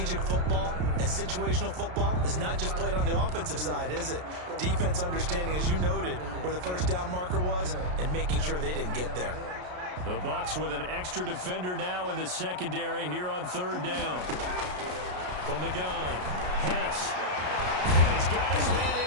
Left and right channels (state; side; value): late; left; 33 ms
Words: football and situational football is not just played on the offensive side, is it? Defense understanding, as you noted, where the first down marker was and making sure they didn't get there. The Bucs with an extra defender now in the secondary here on 3rd down. From the gun, Hess. And he's got his man